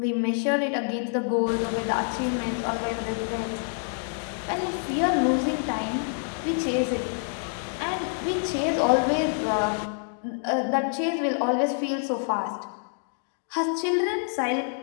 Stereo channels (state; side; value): silent; right; 60 dB below the other